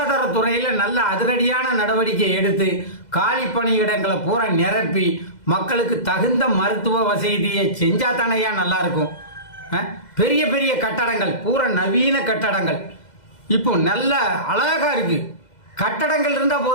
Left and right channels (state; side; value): late; right; 2.0 ms